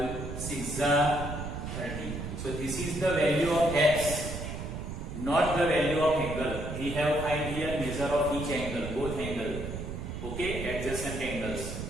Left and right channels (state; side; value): noise; right; rumble, 6 dB below the sound